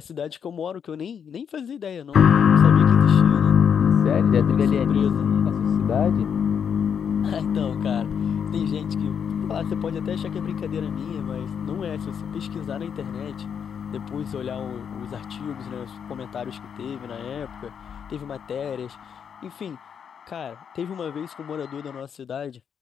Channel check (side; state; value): right; quieter; 7.5 dB